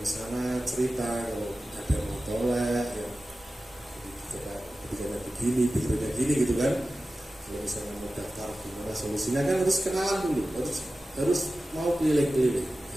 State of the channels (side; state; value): both; normal; correlation 0.95